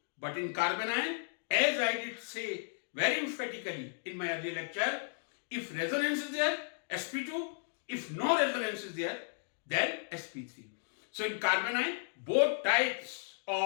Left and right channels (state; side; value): silent; right; digital silence